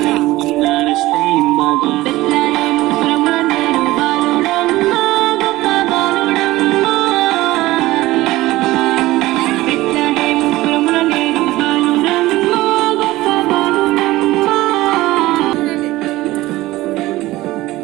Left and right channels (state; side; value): quieter; left; 17.8 dB